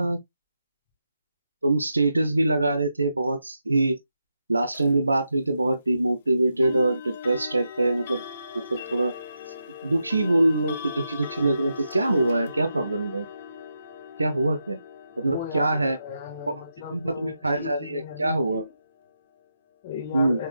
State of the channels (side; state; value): both; inverted; correlation -0.86